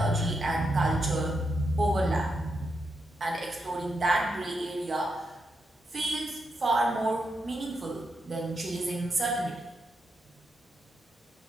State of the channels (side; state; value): both; normal; correlation 0.84